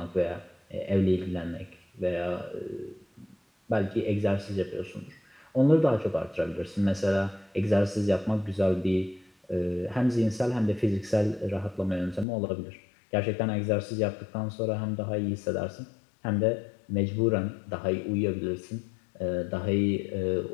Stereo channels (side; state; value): right; drops out; at 12.2 s